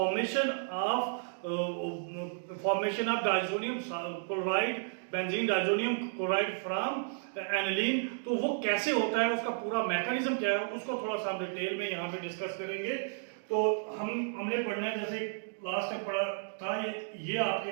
of diazonium chloride, benzene diazonium chloride from aniline, तो वो कैसे होता है, उसका पूरा मैकेनिज्म क्या है, उसको थोड़ा सा हम डिटेल में यहाँ पे डिस्कस करेंगे। तो हमने पढ़ना है, जैसे लास्ट टाइम पढ़ा था, ये आपके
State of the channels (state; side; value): silent; left; digital silence